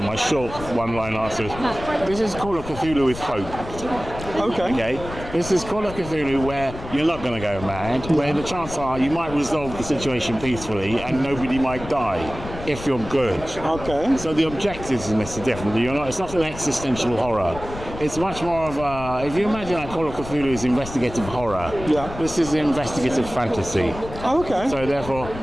my short one-line answer is, this is Call of Cthulhu with hope. Okay. This is Call of Cthulhu where you're not going to go mad, where the chances are you might resolve the situation peacefully and nobody might die if you're good. Okay. So the objectives in this are different. It's not an existential horror. It's much more of a, if you imagine that Call of Cthulhu is investigative horror, this is investigative fantasy. Okay. So therefore,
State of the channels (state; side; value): noise; left; rumble, 11 dB below the sound